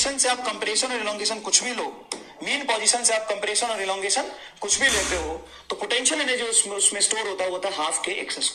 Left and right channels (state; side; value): identical; both; correlation 1.00